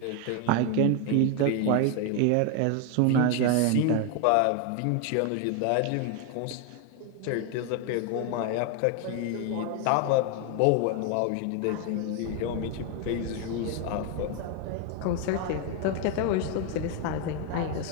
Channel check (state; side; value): different; both; correlation 0.01